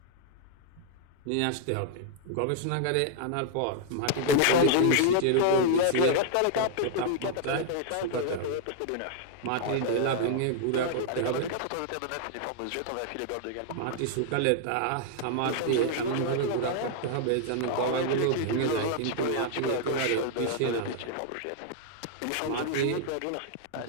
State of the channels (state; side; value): different; both; correlation -0.01